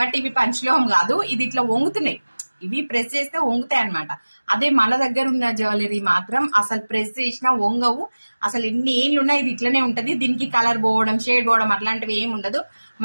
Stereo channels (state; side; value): inverted; both; correlation -1.00